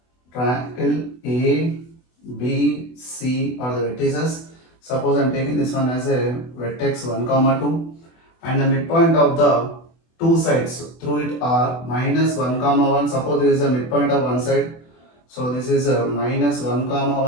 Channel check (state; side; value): late; right; 24 ms